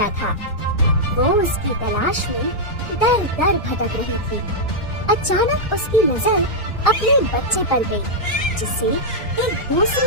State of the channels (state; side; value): normal; both; correlation -0.06